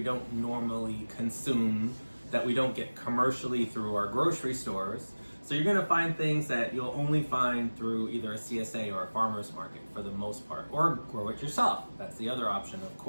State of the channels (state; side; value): inverted; both; correlation -1.00